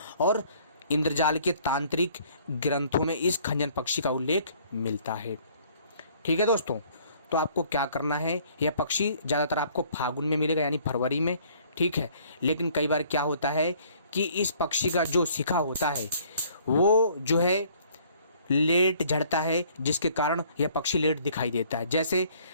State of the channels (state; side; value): inverted; both; correlation -0.58